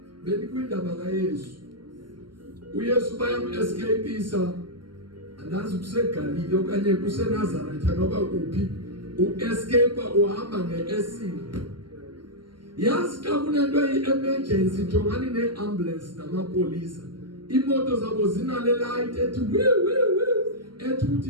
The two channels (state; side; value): late; left; 0.72 ms